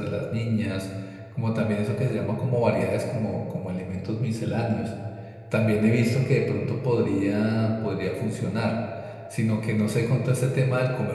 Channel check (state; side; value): identical; both; correlation 1.00